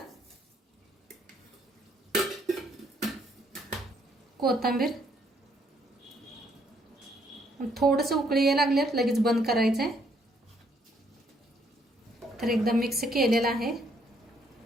कोथिंबीर. थोडंसं उकळी यायला लागल्यात लगेच बंद करायचंय. तर एकदम मिक्स केलेलं आहे.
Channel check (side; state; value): both; normal; correlation 0.69